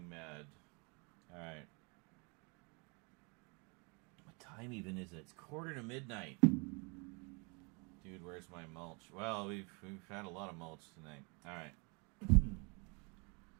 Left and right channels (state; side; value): quieter; left; 32.3 dB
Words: mad. Alright. What time even is it? It's 1:45. Dude, where's my mulch? Well, we've had a lot of mulch tonight. Alright.